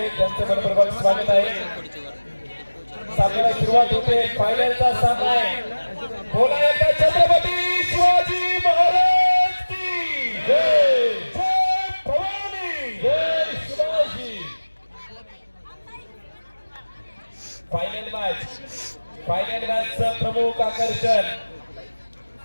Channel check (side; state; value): both; inverted; correlation -1.00